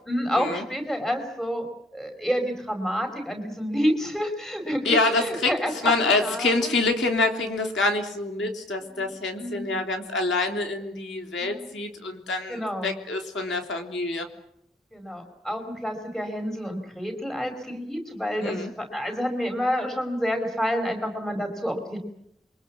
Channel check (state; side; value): normal; both; correlation 0.58